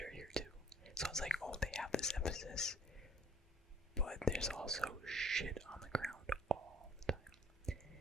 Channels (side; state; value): both; normal; correlation 0.56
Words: here too. So it's like, oh, they have this emphasis, but there's also shit on the ground all the time.